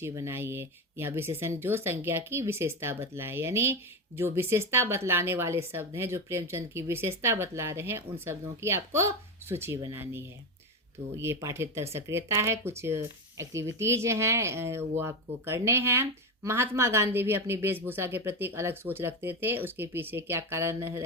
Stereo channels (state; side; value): normal; both; correlation 0.15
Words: बनाइए। यह विशेषण जो संज्ञा की विशेषता बतलाए, यानी जो विशेषता बतलाने वाले शब्द हैं, जो प्रेमचंद की विशेषता बतला रहे हैं, उन शब्दों की आपको सूची बनानी है। तो ये पाठ्येतर सक्रियता है, कुछ एक्टिविटीज हैं वो आपको करने हैं। महात्मा गांधी भी अपनी वेशभूषा के प्रति एक अलग सोच रखते थे, उसके पीछे क्या कारण